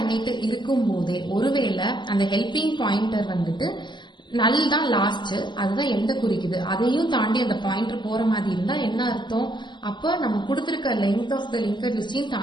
இருக்கும் போதே ஒருவேளை அந்த ஹெல்பிங் பாயிண்டர் வந்துட்டு நல் தான் லாஸ்ட், அதுதான் எந்த குறிக்குது, அதையும் தாண்டி அந்த பாயிண்டர் போற மாதிரி இருந்தா என்ன அர்த்தம், அப்ப நம்ம கொடுத்திருக்க லெங்த் ஆஃப் த லிங்கட் லிஸ்டையும்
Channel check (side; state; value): right; late; 0.22 ms